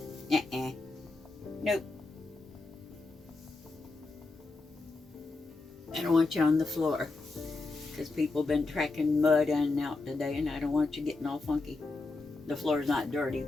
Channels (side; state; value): right; quieter; 3.5 dB